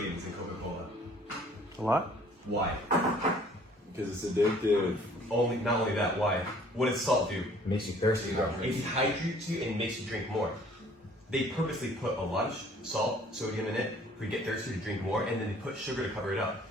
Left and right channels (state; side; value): normal; both; correlation 0.56